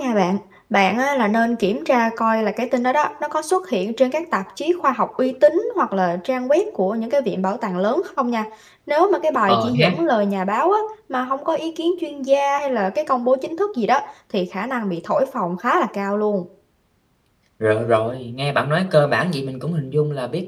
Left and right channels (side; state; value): both; identical; correlation 1.00